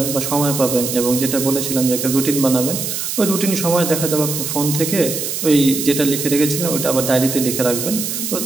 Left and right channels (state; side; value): noise; right; hiss, 4 dB below the sound